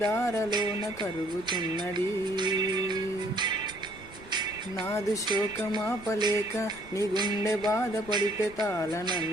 కరుగుతున్నది. నాదు శోకమాపలేక నీ గుండె బాధపడితే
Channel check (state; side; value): noise; right; rumble, 21 dB below the sound